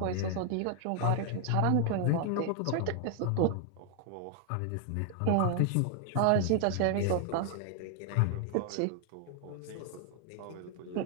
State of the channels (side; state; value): both; different; correlation 0.00